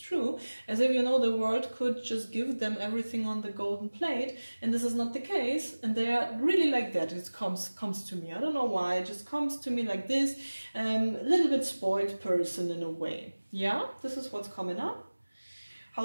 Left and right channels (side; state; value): both; inverted; correlation -1.00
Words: true. As if, you know, the world could just give them everything on the golden plate, and this is not the case. And they are really like that. It comes to me. I don't know why. It just comes to me like this. A little bit spoiled person in a way. Yeah, this is what's coming up.